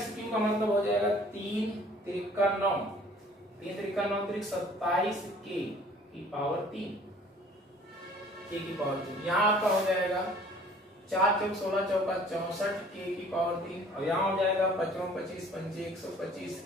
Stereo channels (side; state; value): both; normal; correlation 0.53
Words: क्यूब का मतलब हो जाएगा 3 त्रिका 9, 3 त्रिका 9 त्रिक 27 k की पावर 3, k की पावर 3। यहाँ आपका हो जाएगा 4 चौक 16 चौका 64 k की पावर 3, और यहाँ हो जाएगा 55 25 पंजे 125